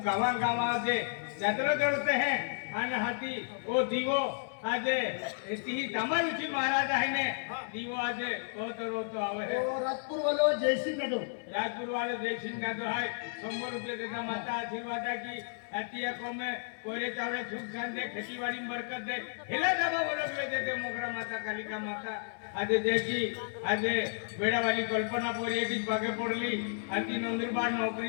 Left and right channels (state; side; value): silent; right; 56 dB below the other